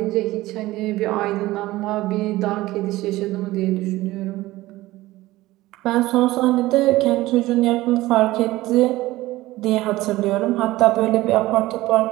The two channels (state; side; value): quieter; left; 17.7 dB